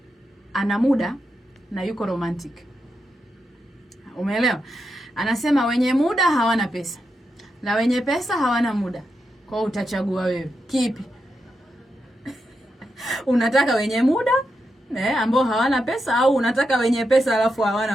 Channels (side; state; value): both; normal; correlation 0.86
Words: ana muda na yuko romantic. Umeelewa? Anasema wenye muda hawana pesa na wenye pesa hawana muda. Kwa hiyo utachagua wewe kipi? Unataka wenye muda ambao hawana pesa, au unataka wenye pesa alafu